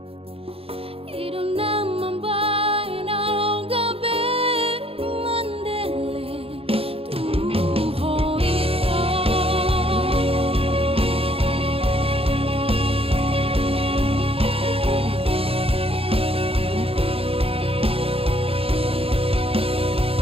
idong naman bay na gabi mandele tuho ito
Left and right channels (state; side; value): late; left; 0.27 ms